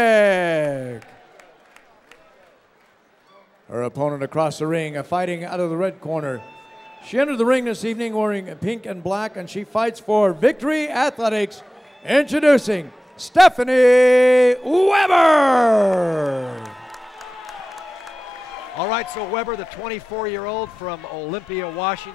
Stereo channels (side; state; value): both; normal; correlation 0.96